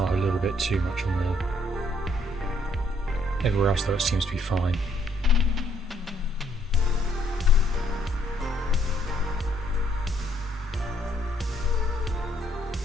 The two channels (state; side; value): normal; both; correlation 0.69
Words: up a little bit too much on there. Everywhere else though it seems to be fine.